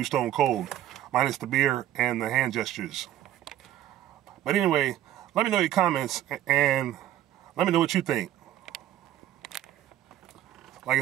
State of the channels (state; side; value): quieter; left; 12.6 dB